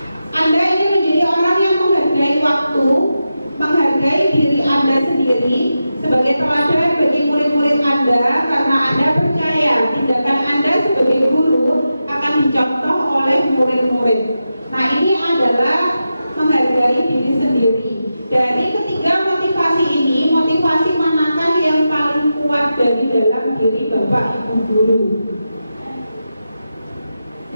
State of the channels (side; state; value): both; inverted; correlation -0.90